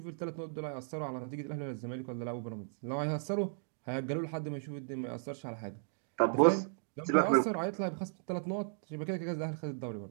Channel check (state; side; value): silent; left; digital silence